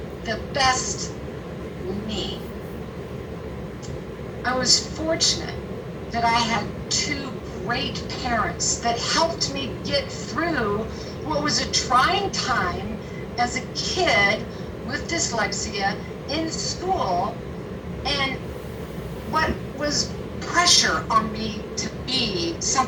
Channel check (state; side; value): identical; both; correlation 1.00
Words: the best me. I was fortunate that I had two great parents that helped me get through what was a trying time as a kid with dyslexia in school, and what was pressure on me to be